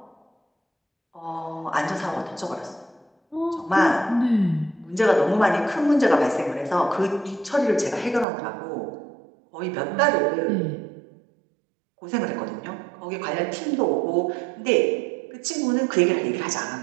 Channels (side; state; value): left; drops out; at 8.2 s